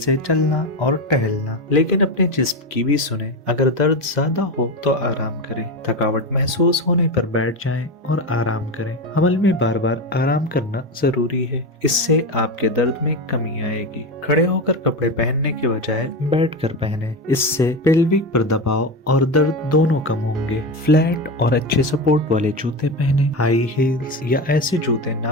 चलना और टहलना, लेकिन अपने जिस्म की भी सुने। अगर दर्द ज्यादा हो तो आराम करें। थकावट महसूस होने पर बैठ जाएं और आराम करें। हमल में बार बार आराम करना जरूरी है, इससे आपके दर्द में कमी आएगी। खड़े होकर कपड़े पहनने के बजाय बैठकर पहने, इससे पेल्विक पर दबाव और दर्द दोनों कम होंगे। फ्लैट और अच्छे सपोर्ट वाले जूते पहने। हाई हील्स या ऐसे जूते ना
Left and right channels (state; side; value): normal; both; correlation 0.19